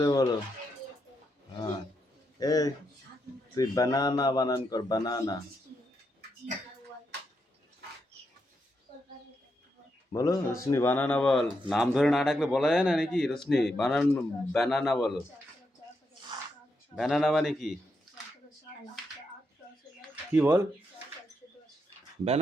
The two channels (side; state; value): both; normal; correlation 0.82